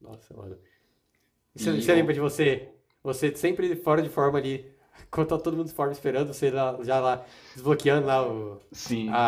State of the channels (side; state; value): both; identical; correlation 1.00